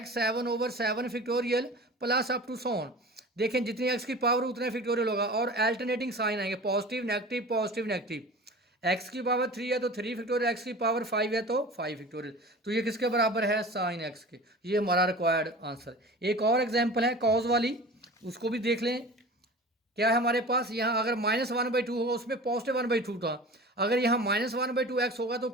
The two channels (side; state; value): both; normal; correlation 0.38